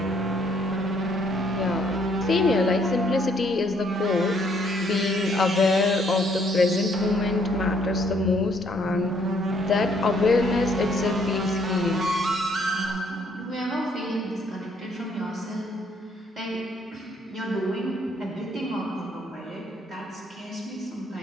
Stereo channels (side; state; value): both; normal; correlation 0.67